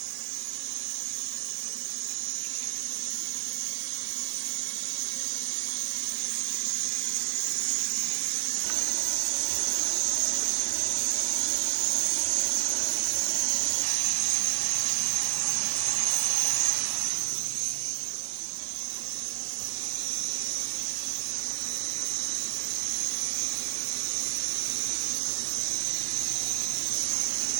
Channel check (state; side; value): silent; left; digital silence